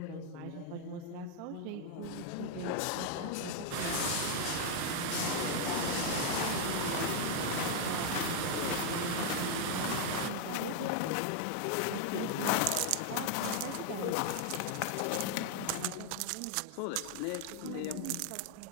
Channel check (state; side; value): different; both; correlation 0.00